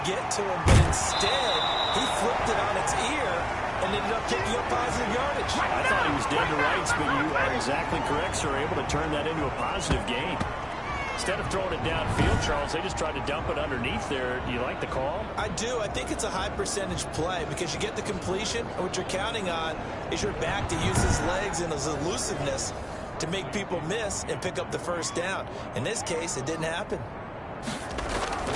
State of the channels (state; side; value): identical; both; correlation 1.00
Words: get to him, but instead, he flipped it on its ear and ended up picking up positive yardage. I thought he was dead to rights, but you are exactly correct, sir. Able to turn that into a positive gain. Instead of throwing it downfield, Charles, they just tried to dump it underneath there. Do you like the call? I do. I think it's a high percentage play because you get the completion, and what you're counting on is your back to use his legs and his elusiveness to make people miss and pick up the 1st down. In this case, it didn't happen.